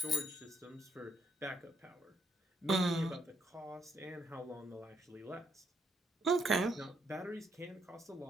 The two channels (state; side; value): normal; both; correlation 0.74